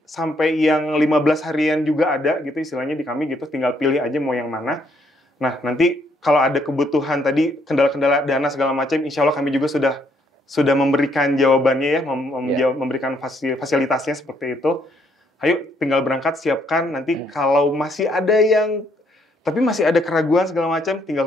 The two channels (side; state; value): both; normal; correlation 0.70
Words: sampai yang 15 harian juga ada gitu istilahnya di kami gitu, tinggal pilih aja mau yang mana. Nah, nanti kalau ada kebutuhan tadi, kendala-kendala dana segala macam, insya Allah kami juga sudah memberikan jawabannya ya, memberikan fasilitasnya seperti itu. Ayo tinggal berangkat, siapkan, nanti kalau masih ada keraguan segala macam, tinggal